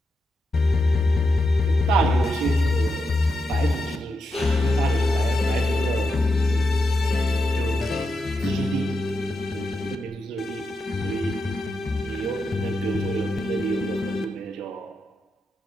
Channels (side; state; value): both; normal; correlation 0.86